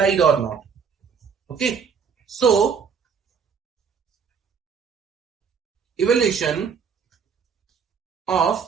or not. Okay, so evaluation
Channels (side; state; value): left; quieter; 6.4 dB